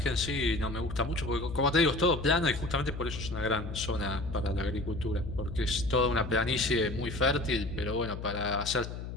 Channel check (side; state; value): left; noise; hum, 8 dB below the sound